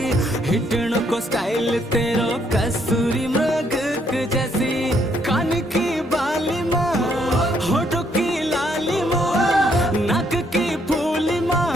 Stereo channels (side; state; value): both; normal; correlation 0.71